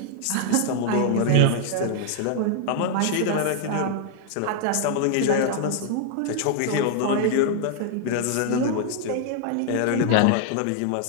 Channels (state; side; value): different; both; correlation 0.00